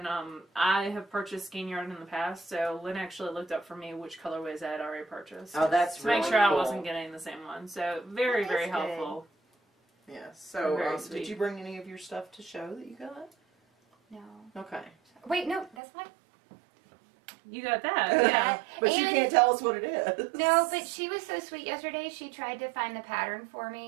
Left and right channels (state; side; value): drops out; left; at 15.8 s